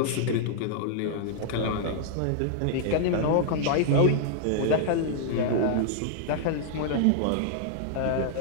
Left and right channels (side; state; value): both; different; correlation -0.01